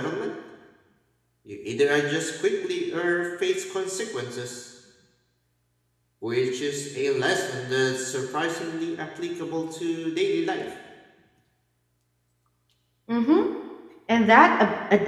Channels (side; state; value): both; identical; correlation 1.00